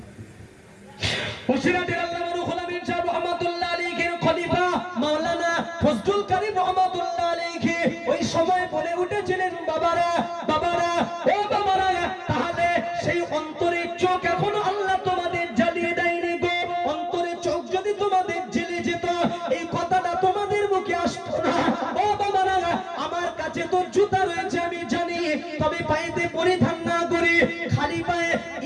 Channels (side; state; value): both; identical; correlation 1.00